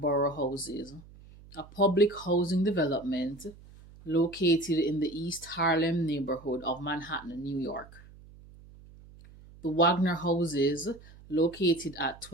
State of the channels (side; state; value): right; noise; hum, 21 dB below the sound